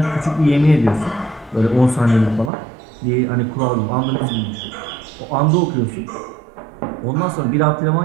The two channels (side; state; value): left; drops out; at 2.5 s